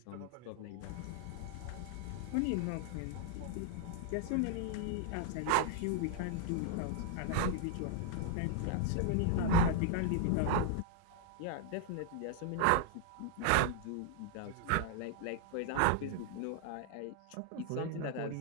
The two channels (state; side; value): different; both; correlation 0.00